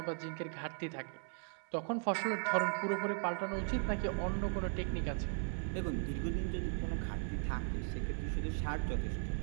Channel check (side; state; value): left; silent; 53 dB below the other